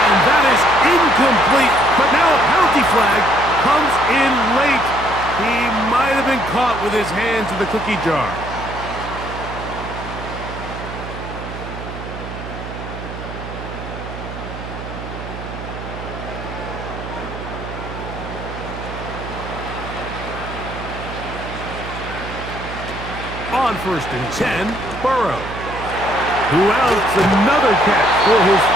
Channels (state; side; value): noise; right; hum, 10 dB below the sound